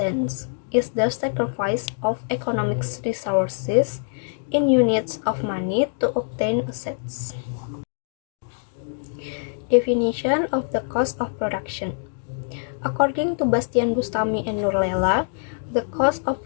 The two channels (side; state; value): right; silent; digital silence